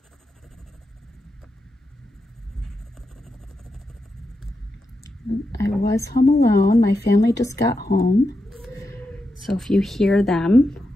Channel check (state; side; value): normal; both; correlation 0.87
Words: I was home alone. My family just got home. So if you hear them,